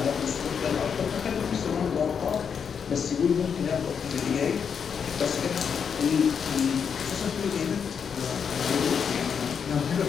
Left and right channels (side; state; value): right; quieter; 6.9 dB